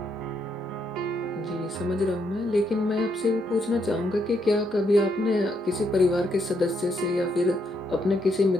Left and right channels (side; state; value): both; normal; correlation 0.76